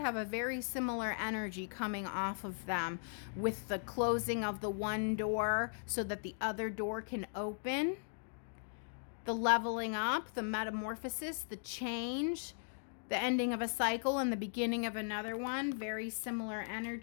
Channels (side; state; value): right; silent; digital silence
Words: a very similar energy coming off of them, with the closing of the one door so that the other door can open. The leveling up, the metamorphosis, the change, the ending of a cycle and the beginning of another one. Very similar